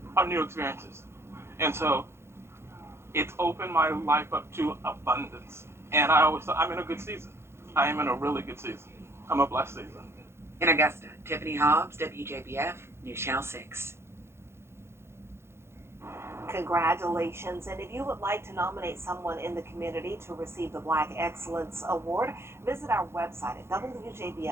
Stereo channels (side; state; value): left; late; 0.12 ms